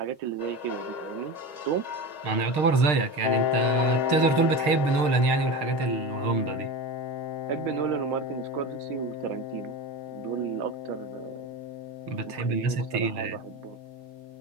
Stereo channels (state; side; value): late; left; 6.6 ms